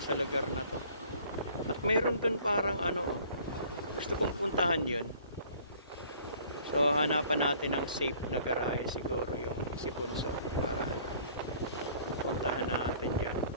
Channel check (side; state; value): both; inverted; correlation -0.53